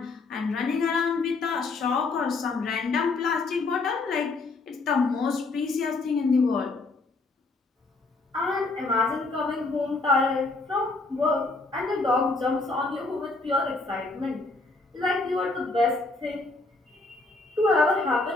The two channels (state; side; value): quieter; right; 3.5 dB